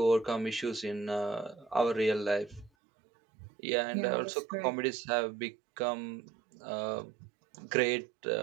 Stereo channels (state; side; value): drops out; left; at 2.7 s